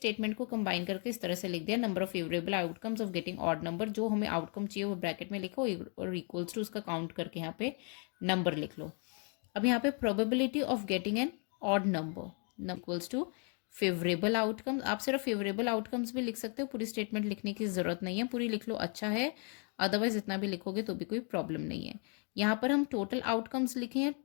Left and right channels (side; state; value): right; quieter; 38.2 dB